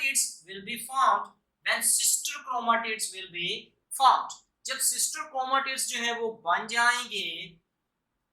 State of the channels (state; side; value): identical; both; correlation 1.00